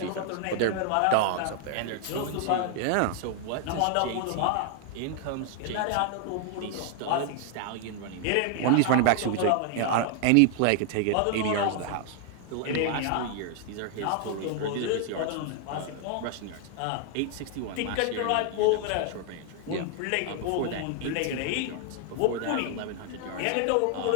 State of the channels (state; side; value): different; both; correlation 0.00